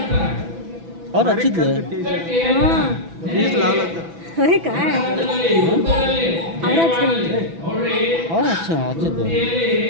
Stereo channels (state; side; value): late; left; 6.0 ms